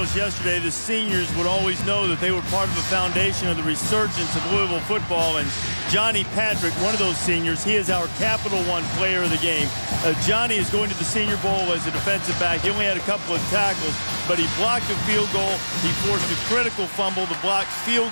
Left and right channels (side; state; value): both; inverted; correlation -1.00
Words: yesterday the seniors would always know that they were part of the foundation of the resurgence of Louisville football. And Johnny Patrick, one of those seniors, he is our Capital One player of the game. Johnny is going to the Senior Bowl as a defensive back. He only had a couple of tackles, but he blocked a field goal. He forced a critical fumble. The blocked field